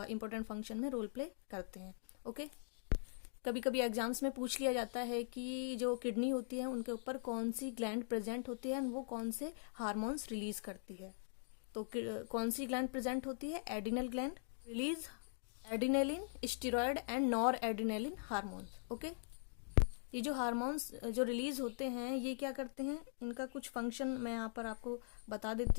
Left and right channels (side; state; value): right; silent; digital silence